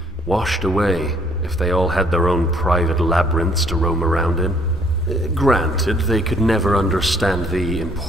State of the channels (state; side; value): normal; both; correlation 0.63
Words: washed away if they all had their own private labyrinths to roam around in. Granted, they could never understand the